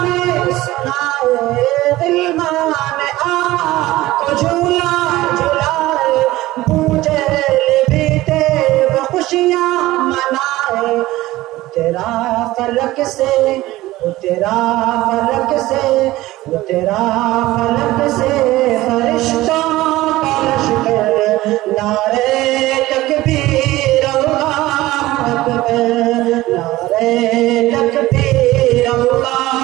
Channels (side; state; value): left; quieter; 17.4 dB